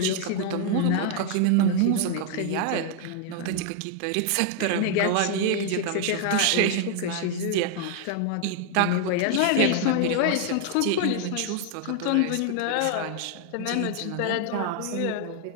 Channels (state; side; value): different; both; correlation 0.00